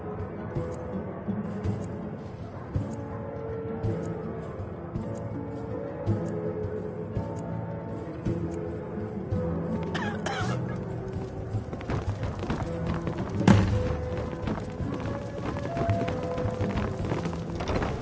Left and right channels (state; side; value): identical; both; correlation 1.00